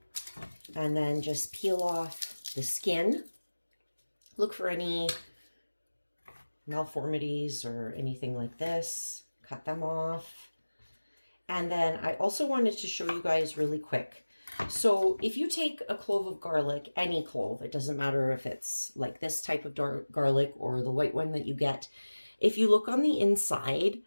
And then just peel off the skin. Look for any malformities or anything like this. Cut them off. And then I also wanted to show you guys really quick. So if you take a clove of garlic, any clove, it doesn't matter if it's like this type of dark garlic or the white one that you get. If you look on the inside,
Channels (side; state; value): both; inverted; correlation -1.00